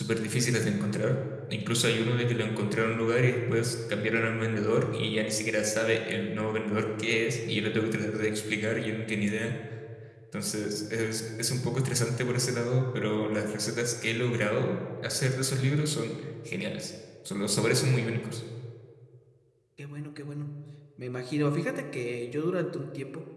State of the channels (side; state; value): both; identical; correlation 1.00